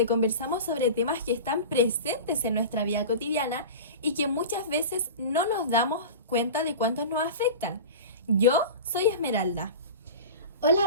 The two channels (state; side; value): inverted; both; correlation -0.31